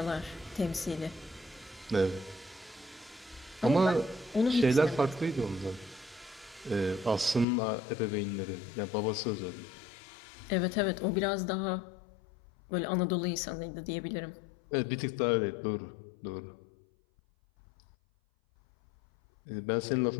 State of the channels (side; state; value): right; drops out; at 7.5 s